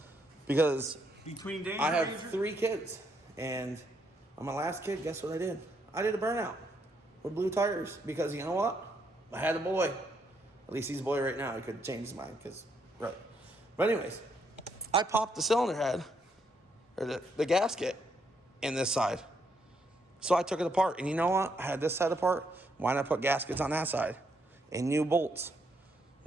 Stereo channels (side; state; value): both; normal; correlation 0.75